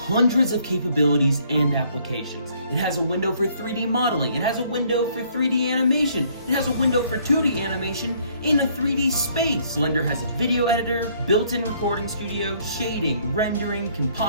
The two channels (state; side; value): inverted; both; correlation -0.64